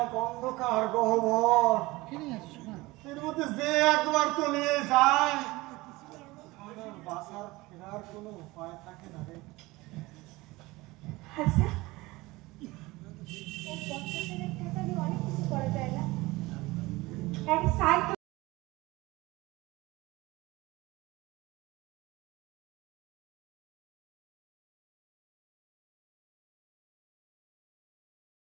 এক অন্ধকার গহ্বর, এর মধ্যে যে একবার তলিয়ে যায় তার আর বাঁচার ফেরার কোনো উপায় থাকে না রে। আচ্ছা, এই 50,000 টাকা দিয়ে অনেক কিছু করা যায় না? এক সাইড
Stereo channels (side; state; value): left; quieter; 20.9 dB